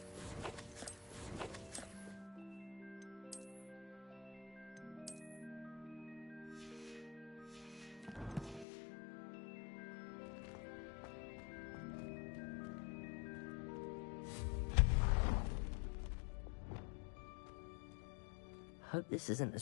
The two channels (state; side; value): drops out; right; at 8.7 s